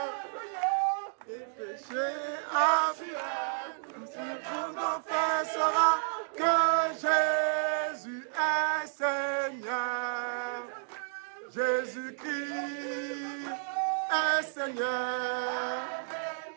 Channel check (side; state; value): left; silent; digital silence